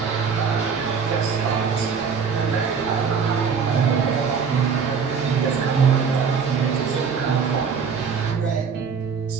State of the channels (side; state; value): left; quieter; 6.1 dB